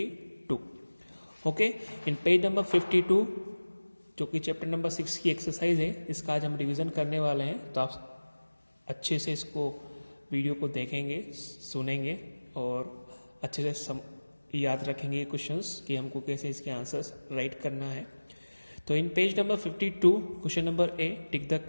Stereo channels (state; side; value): inverted; both; correlation -1.00